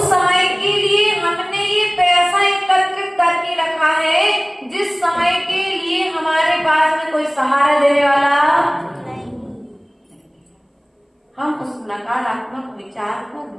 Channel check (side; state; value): both; identical; correlation 1.00